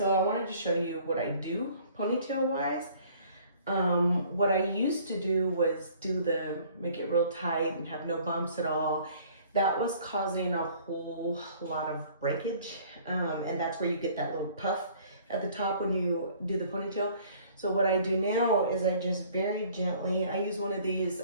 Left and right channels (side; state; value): both; inverted; correlation -0.55